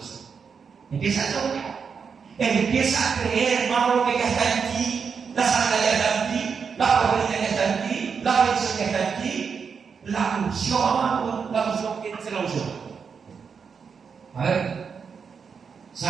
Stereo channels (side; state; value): left; quieter; 6.1 dB